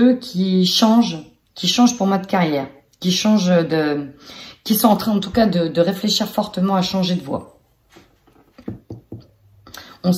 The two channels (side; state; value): both; identical; correlation 1.00